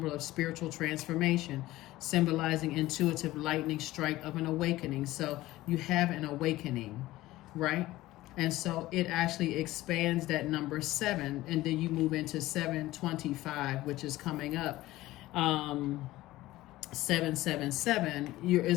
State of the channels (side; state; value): right; quieter; 17.0 dB